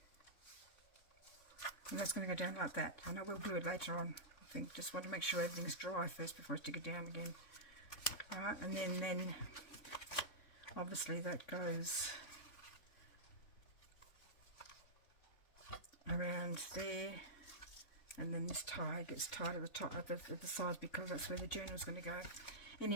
and that's going to go down like that. I know we'll glue it later on. I think just want to make sure everything's dry first before I stick it down again. Alright, and then obviously that goes around there, and then this tie gets tied at the top of the sides because that's where the journal is going to go.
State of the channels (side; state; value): right; late; 3.6 ms